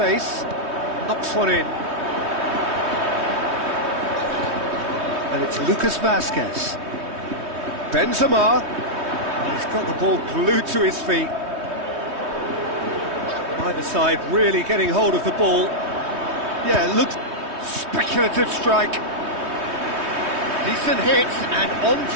Knocks one in. And it's Lucas Vazquez. Benzema. And he's got the ball glued to his feet. Either side really getting hold of the ball. Yeah, it looks... Speculative strike. Decent hit and on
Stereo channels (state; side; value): late; left; 3.2 ms